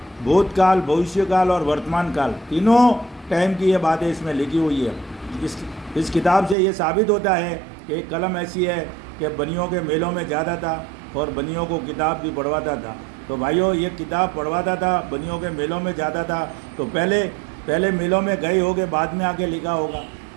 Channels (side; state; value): left; drops out; at 6.6 s